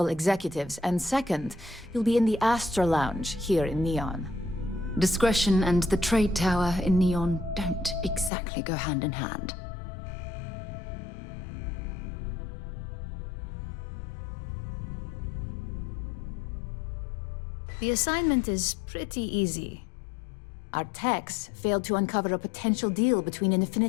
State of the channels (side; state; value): right; drops out; at 8.3 s